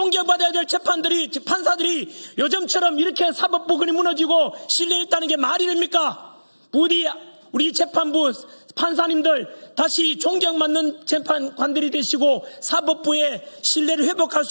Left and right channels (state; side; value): inverted; both; correlation -1.00